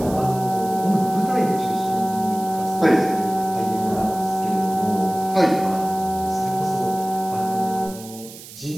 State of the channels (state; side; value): noise; right; hiss, 16 dB below the sound